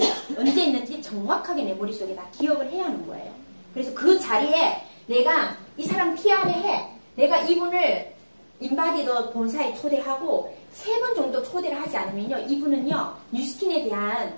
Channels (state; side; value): inverted; both; correlation -1.00